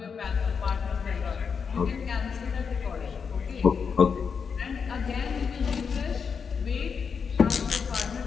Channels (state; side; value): quieter; right; 6.1 dB